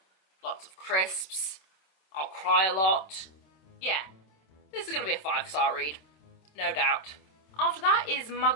lots of crisps. I'll cry a lot. Yeah, this is going to be a 5-star read, no doubt. After that is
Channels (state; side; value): late; right; 26 ms